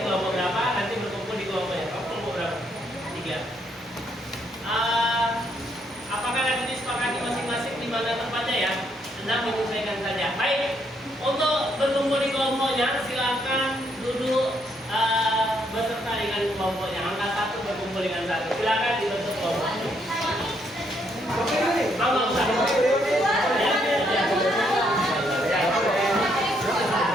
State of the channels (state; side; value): normal; both; correlation 0.73